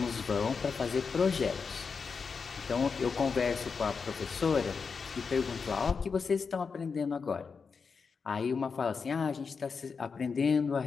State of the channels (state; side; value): quieter; right; 5.4 dB